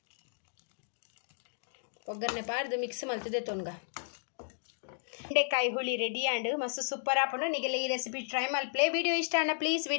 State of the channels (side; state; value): right; silent; digital silence